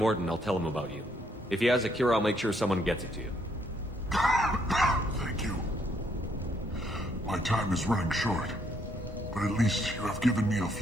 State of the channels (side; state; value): both; normal; correlation 0.71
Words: I'll tell him about you. If he has a cure, I'll make sure someone gets it to you. Thank you. My time is running short, but at least you have given me a